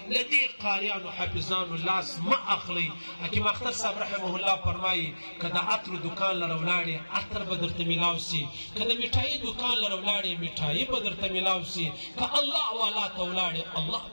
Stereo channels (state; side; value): inverted; both; correlation -1.00